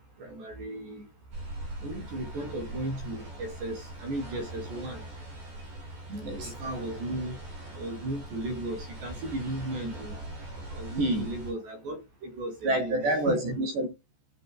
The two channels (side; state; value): left; late; 14 ms